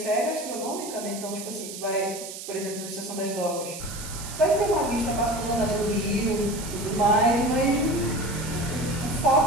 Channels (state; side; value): noise; right; hiss, 10 dB below the sound